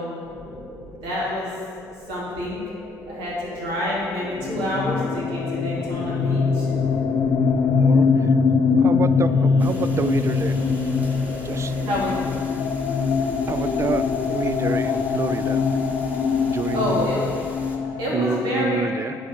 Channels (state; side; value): quieter; right; 3.2 dB